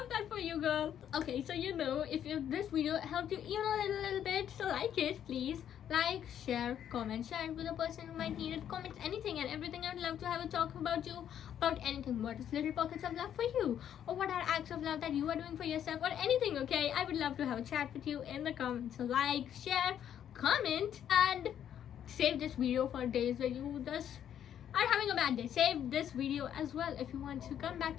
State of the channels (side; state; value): right; quieter; 9.8 dB